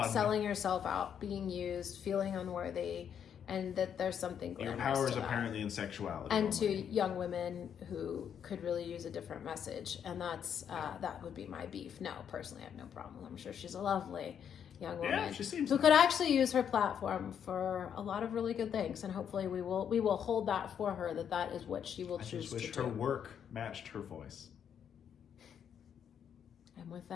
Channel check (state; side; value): quieter; right; 8.4 dB